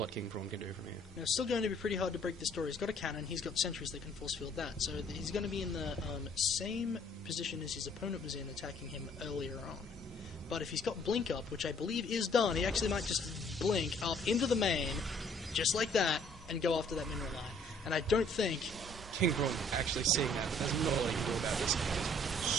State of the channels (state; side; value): normal; both; correlation 0.60